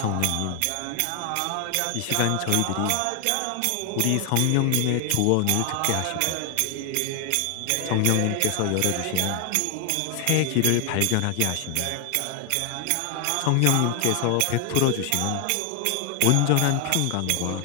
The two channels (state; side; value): different; both; correlation 0.00